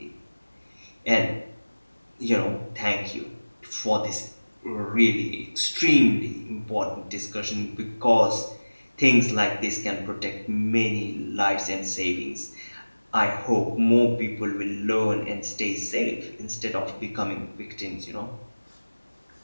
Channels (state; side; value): inverted; both; correlation -1.00